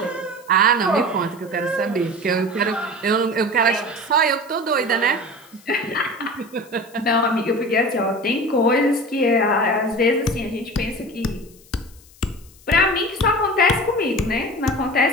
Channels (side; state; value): left; noise; hiss, 26 dB below the sound